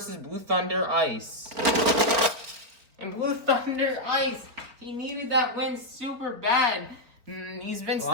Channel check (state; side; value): late; left; 4.1 ms